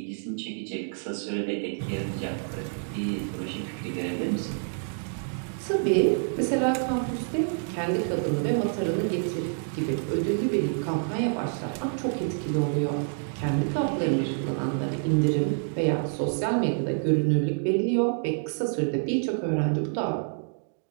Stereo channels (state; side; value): silent; left; 60 dB below the other